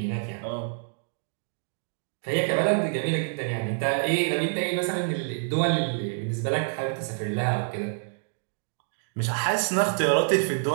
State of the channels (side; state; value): left; silent; digital silence